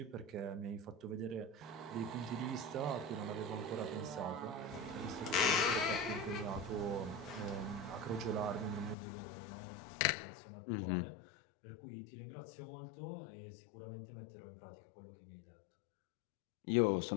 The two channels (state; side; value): drops out; right; at 9.0 s